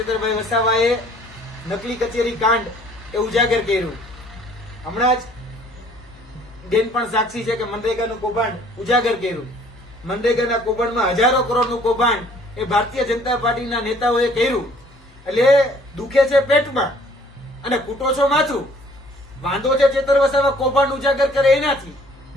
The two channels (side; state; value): both; normal; correlation 0.57